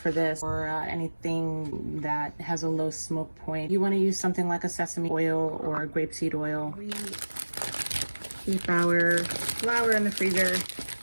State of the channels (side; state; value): both; inverted; correlation -1.00